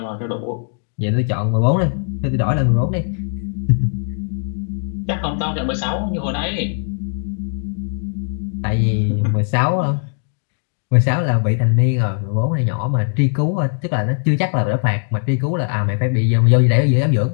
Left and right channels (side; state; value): right; silent; digital silence